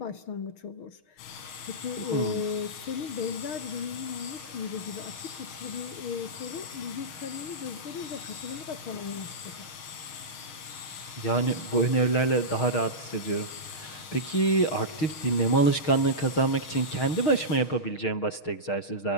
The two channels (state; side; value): late; right; 6.4 ms